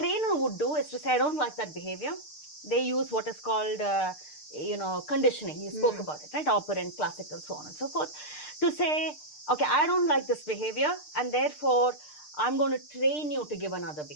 would do is to say, I don't like that behavior. They use what is called, conditioning. You spoke about it, right? Operant, classical, so on and so forth. To say, okay, I don't like this behavior, and therefore, I'm going to train you to give another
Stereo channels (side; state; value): right; late; 6.6 ms